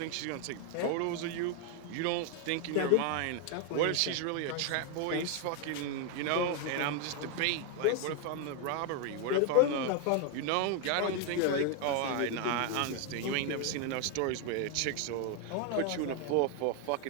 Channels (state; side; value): different; both; correlation 0.01